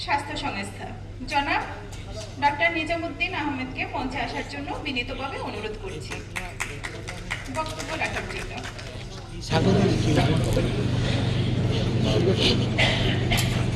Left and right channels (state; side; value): identical; both; correlation 1.00